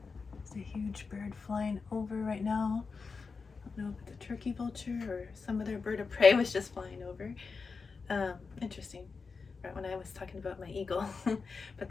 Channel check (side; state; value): right; quieter; 4.8 dB